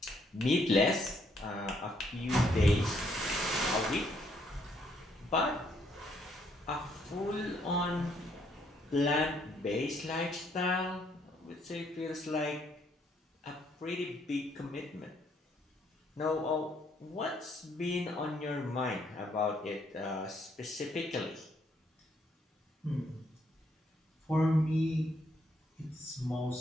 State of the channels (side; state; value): both; normal; correlation 0.70